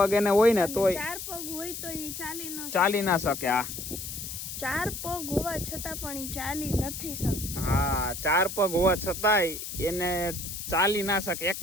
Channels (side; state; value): left; noise; hiss, 7 dB below the sound